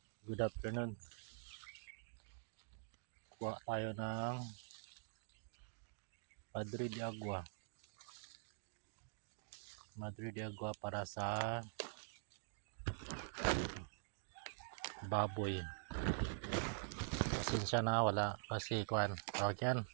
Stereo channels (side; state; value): left; silent; digital silence